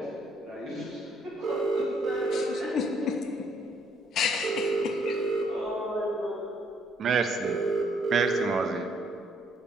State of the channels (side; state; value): both; normal; correlation 0.68